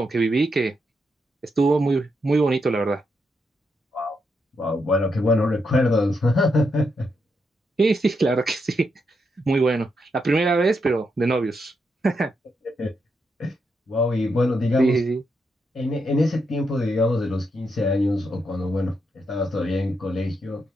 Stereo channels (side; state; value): both; normal; correlation 0.82